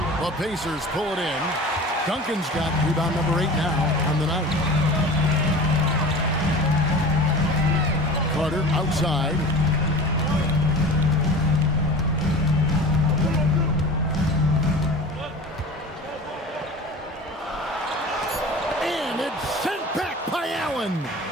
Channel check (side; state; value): both; normal; correlation 0.37